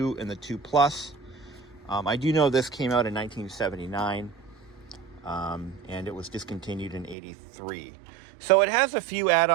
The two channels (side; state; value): left; drops out; at 7.2 s